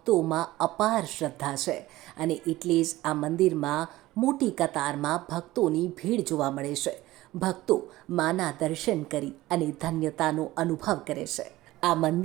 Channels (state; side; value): quieter; left; 17.3 dB